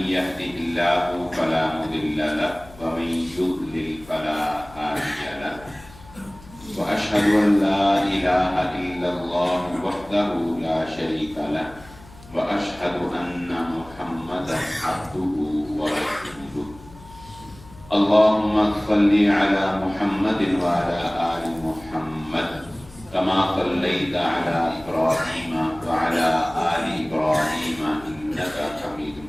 يهده الله فلا مضل له ومن يضلل فلا هادي له وأشهد أن لا إله إلا الله وحده لا شريك له وأشهد أن محمدا عبده ورسوله اللهم صل على محمد وعلى آل محمد كما صليت على إبراهيم وعلى آل إبراهيم إنك حميد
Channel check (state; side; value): noise; left; hum, 20 dB below the sound